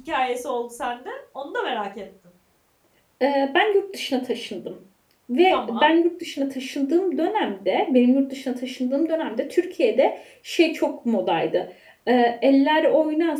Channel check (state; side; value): identical; both; correlation 1.00